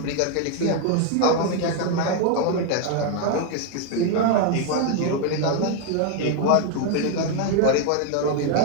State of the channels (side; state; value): both; different; correlation 0.01